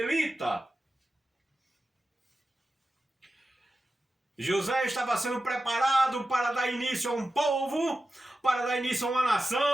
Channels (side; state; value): both; normal; correlation 0.93